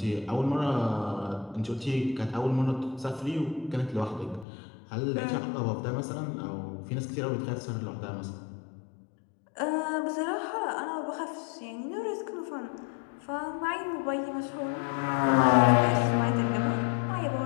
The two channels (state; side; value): drops out; right; at 4.5 s